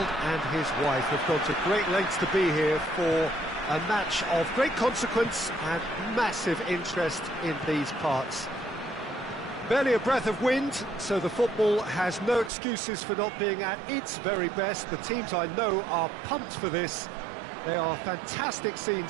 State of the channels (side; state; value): left; drops out; at 12.5 s